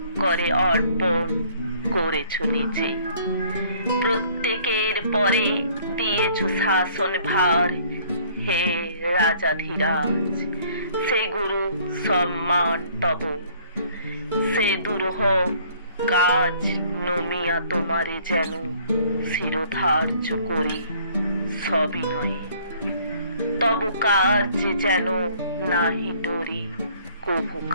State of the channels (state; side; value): inverted; both; correlation -0.58